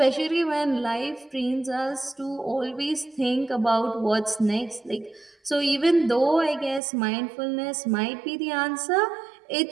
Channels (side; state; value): left; drops out; at 6.8 s